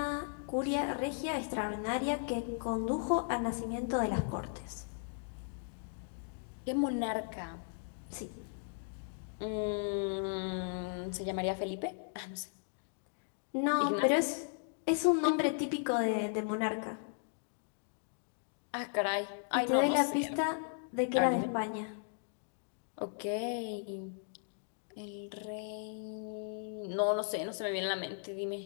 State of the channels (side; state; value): right; silent; digital silence